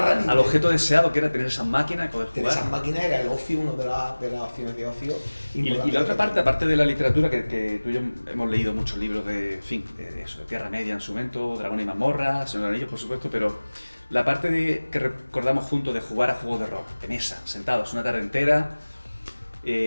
objeto deseado que era tener esas máquinas y poder jugar. Tener esas máquinas era el ocio, una de las opciones de ocio. Y la otra parte, aparte de la literatura, que tú y yo hemos leído muchos libros de eso, de Tierra Media en su momento, Dragón y Mazmorra, Señor de los Anillos, por supuesto, pero la parte que recordamos juntos de jugar a juegos de rol, de mesa, sentados una tarde entera,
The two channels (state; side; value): inverted; both; correlation -1.00